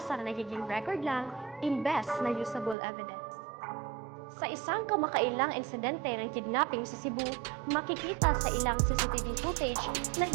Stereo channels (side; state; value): left; drops out; at 2.8 s